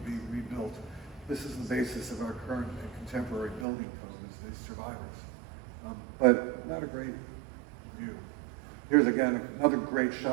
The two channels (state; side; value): drops out; left; at 3.7 s